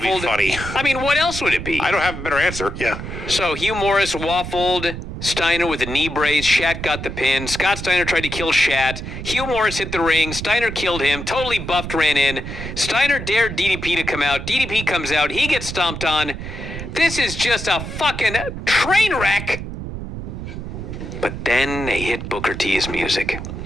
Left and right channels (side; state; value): right; noise; rumble, 8 dB below the sound